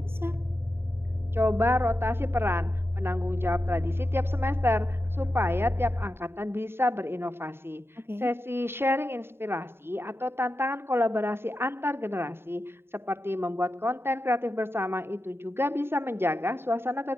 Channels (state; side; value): late; left; 0.11 ms